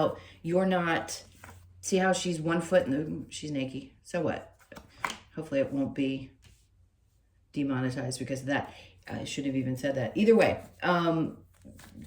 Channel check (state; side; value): identical; both; correlation 1.00